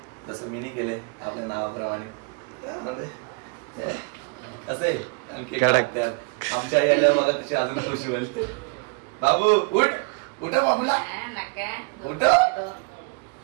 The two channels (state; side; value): quieter; left; 31.7 dB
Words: जसं मीनी केले आपल्या नावाप्रमाणे. असे आमच्या आई आल्या बघा कशी अजून खुशी होईल. बाबू उठ, उठा बाबूला, उठ.